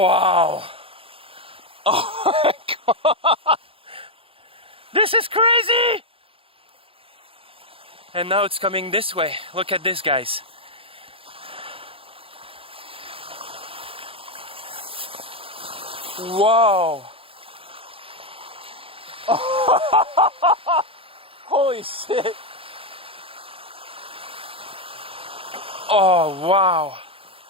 wow! Oh my god! This is crazy! And now it's coming this way. Look at this, guys. Whoa! Holy shit! Oh wow!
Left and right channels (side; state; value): left; late; 0.27 ms